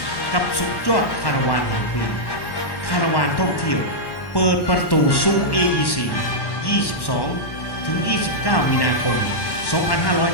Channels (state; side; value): late; right; 1.1 ms